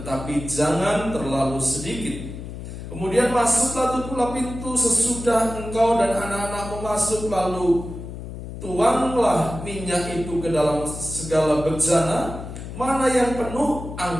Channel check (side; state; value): left; noise; hum, 10 dB below the sound